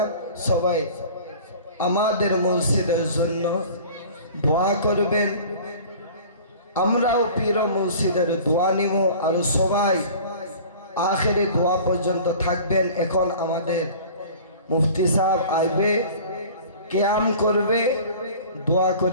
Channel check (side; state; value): both; inverted; correlation -0.43